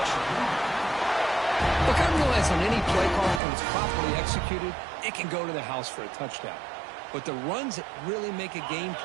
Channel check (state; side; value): drops out; left; at 3.4 s